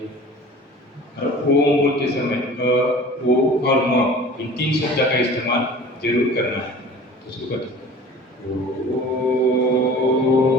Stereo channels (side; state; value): both; normal; correlation 0.43